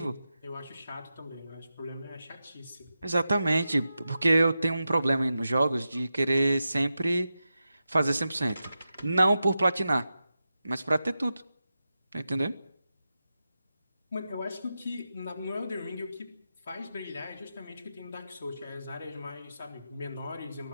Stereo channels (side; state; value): both; inverted; correlation -0.91